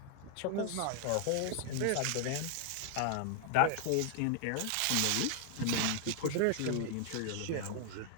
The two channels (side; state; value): both; different; correlation 0.00